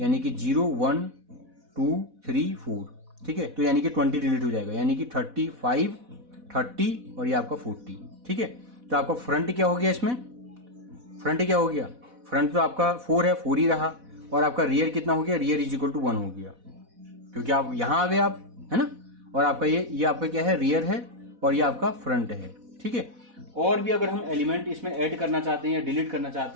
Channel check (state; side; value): late; left; 4.1 ms